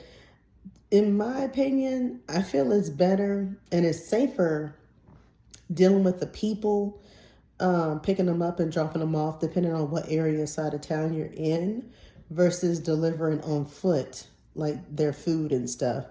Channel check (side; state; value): both; identical; correlation 1.00